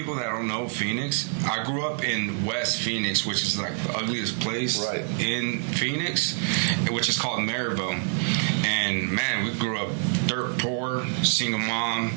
that don't know Phoenix, I grew up in West Phoenix, which is like the ugliest place in Phoenix, which is called Maryville. And man, we grew up dirt poor, single mom.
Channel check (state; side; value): silent; left; 55 dB below the other